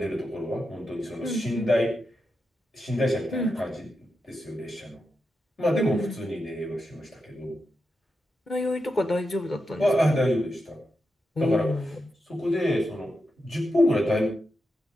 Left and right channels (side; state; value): both; normal; correlation 0.87